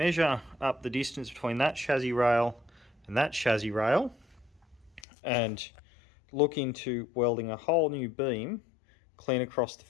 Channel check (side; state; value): right; drops out; at 5.0 s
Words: up the distance between that chassis rail and that chassis rail and look into welding a whole new beam clean across the